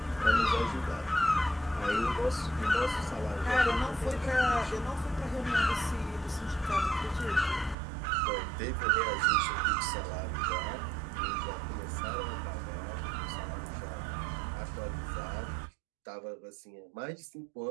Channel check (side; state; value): left; drops out; at 7.8 s